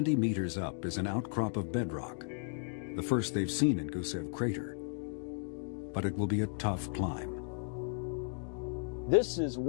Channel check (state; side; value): silent; right; 54 dB below the other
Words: meters up is an outcrop of bedrock, the first they've seen in Gusev Crater. But it will be a tough climb. This is